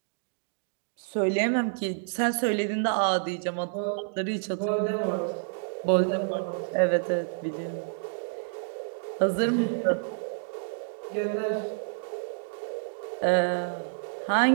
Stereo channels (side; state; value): left; silent; digital silence